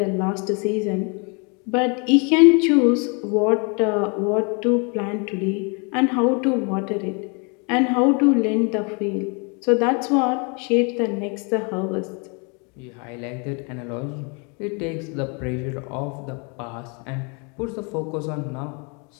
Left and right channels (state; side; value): quieter; right; 33.9 dB